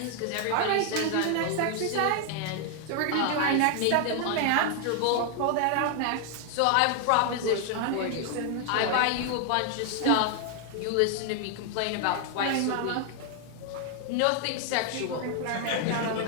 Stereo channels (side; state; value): both; different; correlation 0.00